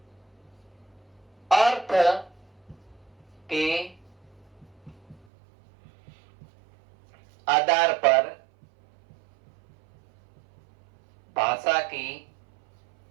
अर्थ के आधार पर भाषा की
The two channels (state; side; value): drops out; left; at 5.2 s